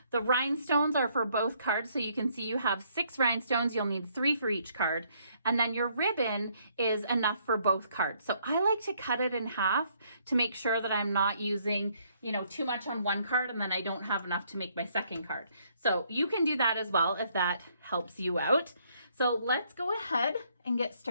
The rhinestones are for both cards, so you can see you have 6 rhinestones. You'll need 3 for each card. And then your ribbon is enough for both cards. So I like to cut it in half to make sure that I'm not using, you know, too much on one card and then I don't have enough to make my second card. So you can do that as well if that helps you out. So let's go ahead and get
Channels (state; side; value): inverted; both; correlation -0.68